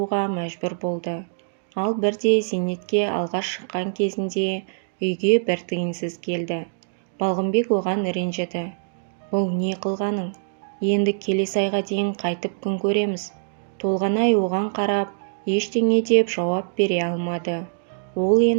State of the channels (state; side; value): silent; left; digital silence